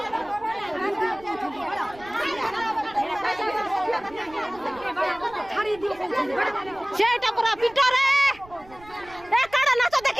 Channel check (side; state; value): right; noise; rumble, 23 dB below the sound